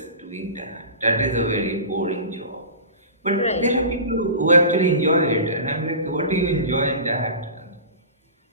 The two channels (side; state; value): both; inverted; correlation -0.33